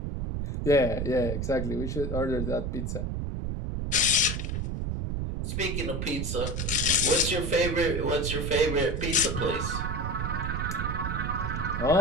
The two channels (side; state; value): right; noise; rumble, 2 dB below the sound